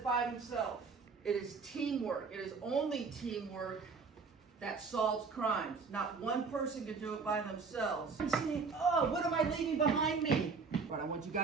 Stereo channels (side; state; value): left; quieter; 5.0 dB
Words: by themselves. It is teamwork. It is only teamwork that solves crimes. Not one person can do it by themselves. I'm saying, oh, what am I leaving behind me? What I want you